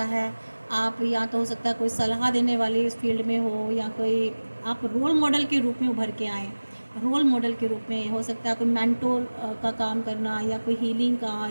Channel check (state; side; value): inverted; both; correlation -1.00